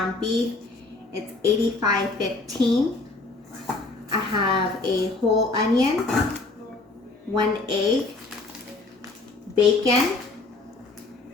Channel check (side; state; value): right; quieter; 3.4 dB